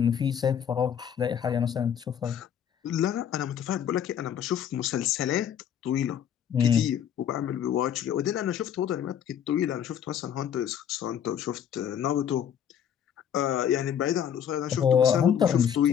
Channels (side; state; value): right; quieter; 8.9 dB